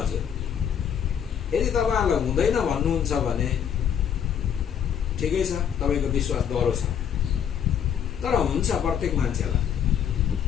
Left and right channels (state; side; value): quieter; right; 8.5 dB